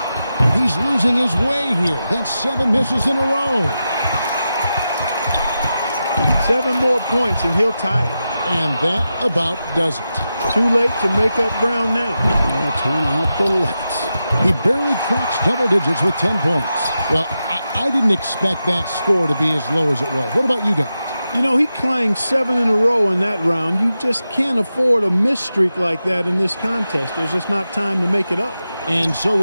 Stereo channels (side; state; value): both; inverted; correlation -0.90